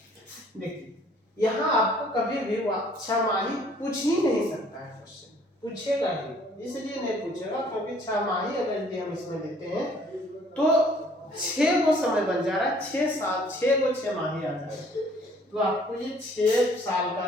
देखिए यहाँ आपको कभी भी 6 माही पूछ ही नहीं सकता है, क्वेश्चन पूछेगा ही, इसलिए नहीं पूछेगा क्योंकि 6 माही अगर यदि हम इसमें देते हैं तो 6 को समय बन जा रहा है, 6 साल, 6 को 6 माही आ जाएगा, तो आपको ये 6 साल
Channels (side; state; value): both; normal; correlation 0.58